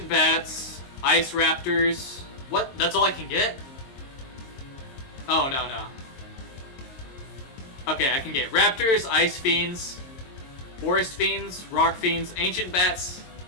Bats, Ice Raptors. What? That's all I can get? Oh, no. Okay, I can get Raptors, Ice Fiends, Forest Fiends, Rock Fiends, Ancient Bats,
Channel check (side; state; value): right; late; 22 ms